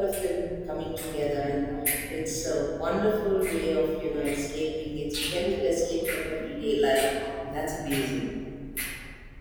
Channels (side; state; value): both; identical; correlation 1.00